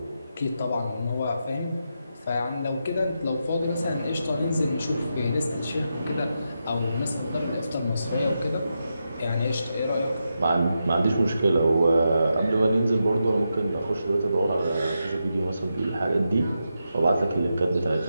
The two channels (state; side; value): inverted; both; correlation -0.86